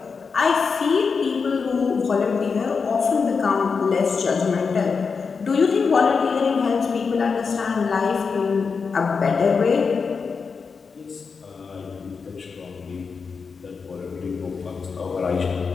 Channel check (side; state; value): right; quieter; 5.3 dB